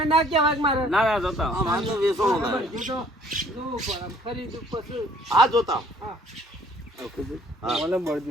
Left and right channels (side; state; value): both; normal; correlation 0.59